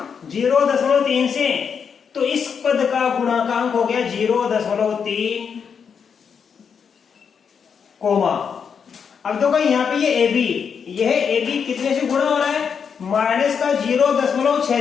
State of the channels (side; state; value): right; quieter; 6.7 dB